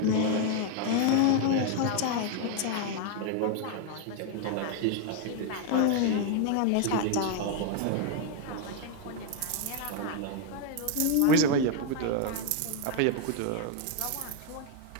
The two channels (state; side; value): different; both; correlation 0.01